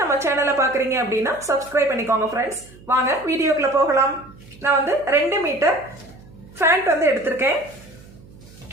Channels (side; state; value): right; noise; hum, 22 dB below the sound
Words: நம்ம சேனலை பார்க்கறீங்க அப்படினா Subscribe பண்ணிக்கோங்க फ्रेंड्स. வாங்க வீடியோக்குள்ள போகலாம். நான் வந்து 2 மீட்டர் ஃபேண்ட் வந்து எடுத்துர்க்கேன்.